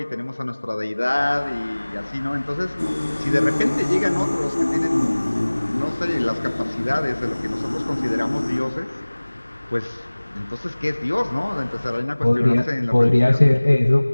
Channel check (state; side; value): inverted; both; correlation -1.00